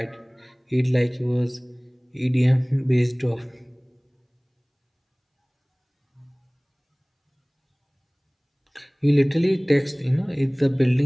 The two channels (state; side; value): identical; both; correlation 1.00